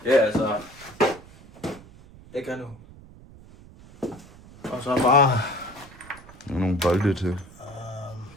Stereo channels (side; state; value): right; noise; rumble, 21 dB below the sound